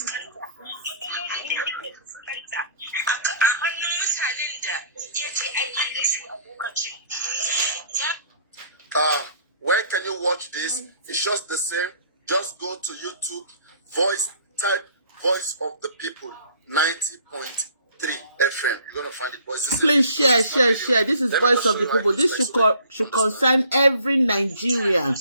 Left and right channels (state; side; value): inverted; both; correlation -0.56